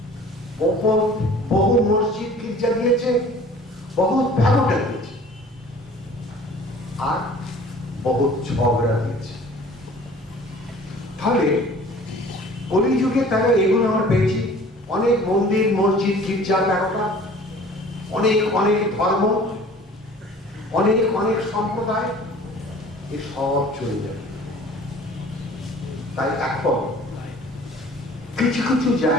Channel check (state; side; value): normal; both; correlation 0.48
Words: বহু মসজিদ গির্জা দিয়েছে, বহু ব্যবসা দিয়েছে, আর বহু ঝগড়া দিয়েছে। তাহলে কলিযুগে তারা এগুলো আমরা পেয়েছি, অনেক মন্দির মসজিদ গির্জা ব্যবসা, অনেক অনেক ধর্ম, অনেক অনেক সম্প্রদায়, এ সব চলে যাবে। তাই এখন কিছু কিছু